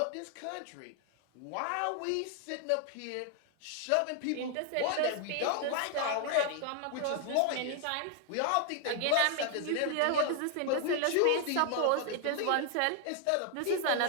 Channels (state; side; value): different; both; correlation 0.00